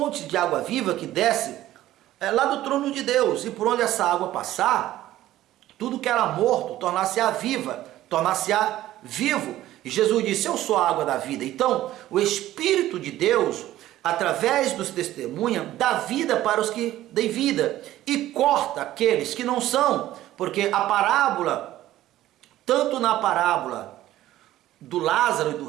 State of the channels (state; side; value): quieter; left; 14.3 dB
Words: de água viva que desce lá do trono de Deus, e por onde essa água passar, tudo que era morto tornar-se-á viva, tornar-se-á vivo. E Jesus disse: eu sou a água da vida. Então o Espírito de Deus, através dos testemunhas, dá vida para os que têm vida e corta aqueles que não são, porque a parábola, tanto na parábola do Lázaro e do